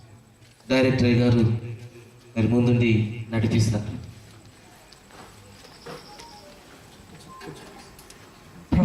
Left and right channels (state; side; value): identical; both; correlation 1.00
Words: డైరెక్టర్ గారు మరి ముందుండి నడిపిస్తారు.